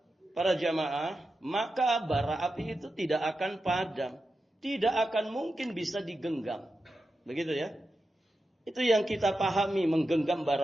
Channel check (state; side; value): normal; both; correlation 0.90